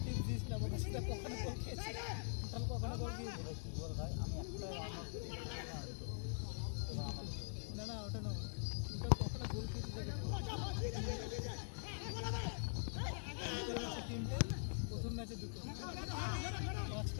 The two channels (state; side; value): silent; right; digital silence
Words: টিপস দিস না, বলছিস কখনো বল খেয়েছি কখনো বল দিয়েছি বল ভাই আমি একটা না না ওটা না, ওটা কখনো গোল খেয়েছি তিনটে, প্রথম ম্যাচে দুটো,